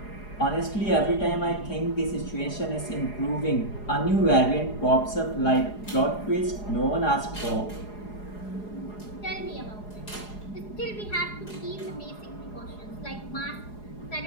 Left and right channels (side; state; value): right; late; 4.8 ms